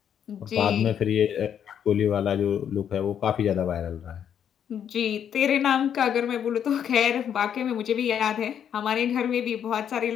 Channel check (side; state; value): right; quieter; 8.9 dB